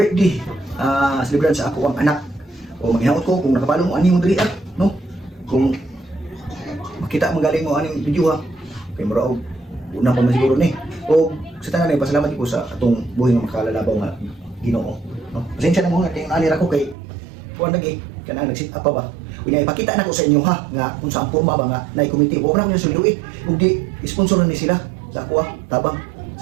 celebration sa ako ang anak. O maghinawot ko kung nakabalo mo ani mo diri no? Kung makita magaling mo aning video ha. Kay mura og una pa man siguro ni. O sa tanan ay pasalamat ko sa atong buhay nga makalalabaw nga Ginoo. No? Pasensya na mo nga kay ani ra ko kay kuan lagi kanang nag-sit up pa ba. Kunya ipakita na ko sa inyo ha nga kung saan porma ba nga nay committee. Wa na ko sulduit ug di sponsoran ni sila sa ako tabang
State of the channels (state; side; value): drops out; left; at 16.9 s